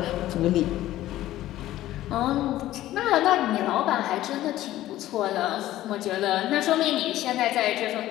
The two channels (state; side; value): quieter; right; 14.6 dB